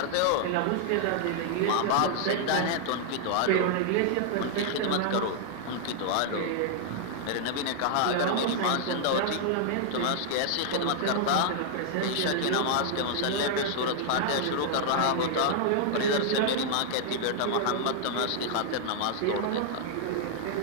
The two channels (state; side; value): different; both; correlation -0.01